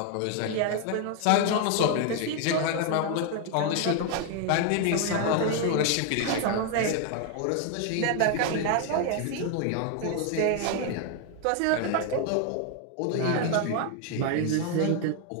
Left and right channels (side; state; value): both; different; correlation 0.01